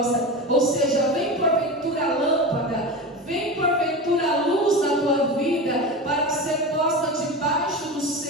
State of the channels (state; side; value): normal; both; correlation 0.25